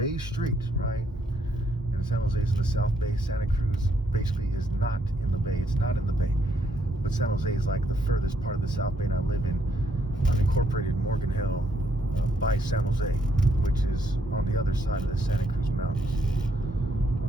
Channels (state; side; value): normal; both; correlation 0.73